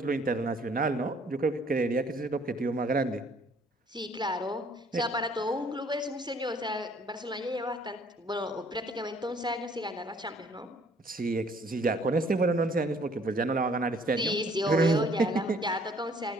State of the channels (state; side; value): normal; both; correlation 0.60